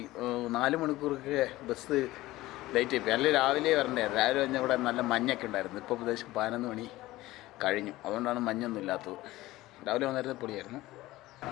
4 മണിക്കൂറൊക്കെ ബസ് ലേറ്റ് ആയിപ്പോയി. അല്ലെങ്കിൽ രാവിലെ വരണ്ടായിരുന്നു. രാവിലെ കഴിഞ്ഞാൽ ഇവിടെ നല്ല മഞ്ഞൊക്കെ ഉണ്ടായിരുന്നു. ഇപ്പോൾ ഏകദേശം 11 മണി കഴിഞ്ഞു. അതുകൊണ്ടാണ് മഞ്ഞൊന്നും ഇല്ലാത്തത്. രാവിലെ വന്നിരുന്നത് പൊളിയായിരുന്നു.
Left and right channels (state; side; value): quieter; right; 17.6 dB